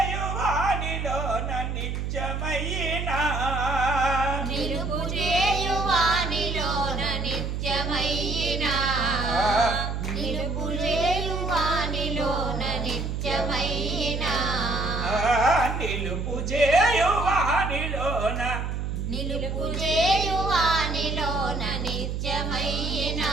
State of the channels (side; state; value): right; noise; hum, 3 dB below the sound